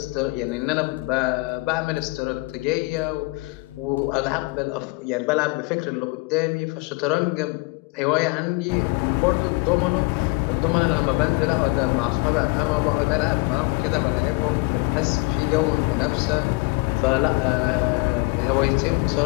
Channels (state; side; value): quieter; right; 26.4 dB